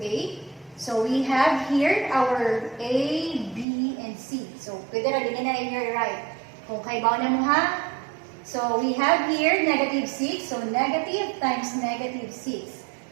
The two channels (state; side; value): drops out; left; at 3.7 s